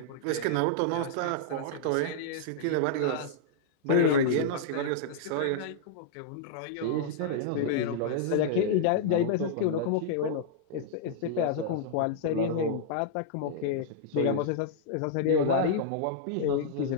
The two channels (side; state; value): both; different; correlation -0.02